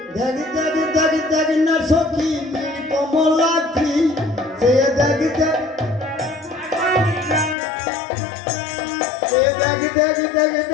দেখি দেখি দেখি দেখি না সখী কমলাক্ষী, সে দেখি দেখি দেখি দেখি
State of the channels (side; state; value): right; drops out; at 7.6 s